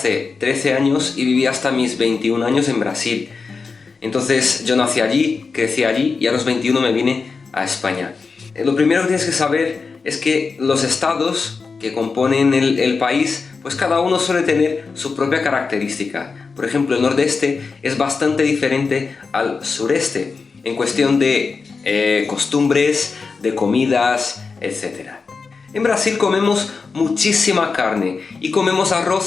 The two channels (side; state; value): right; quieter; 4.7 dB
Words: 13 años y viví hasta mis 21 años en Brasil. Entonces yo nací allí, crecí allí y a los 21 me vine a España. Lo primero que tienes que saber es que los estados que componen el país, pues cada uno suele tener su propia característica. Por ejemplo, el nordeste es bastante diferente al sureste en cuestión de costumbres, de comidas, etc. En Brasil comemos muchísima carne y comemos